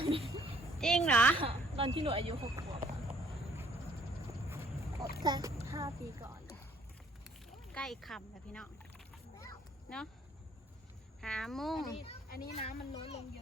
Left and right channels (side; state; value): both; normal; correlation 0.61